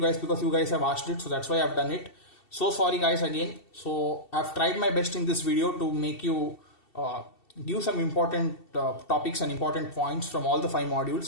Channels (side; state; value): right; late; 2.7 ms